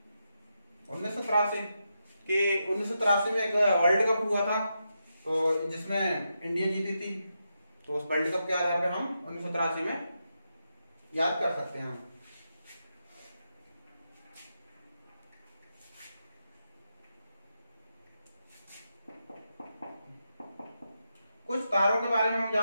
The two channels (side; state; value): both; inverted; correlation -0.86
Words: 1983 में एक वर्ल्ड कप हुआ था, तो जिसमें इंडिया जीती थी। तो उस वर्ल्ड कप के आधार पर हम 1983 में याद कर सकते हैं। कुछ तारों के बारे में हम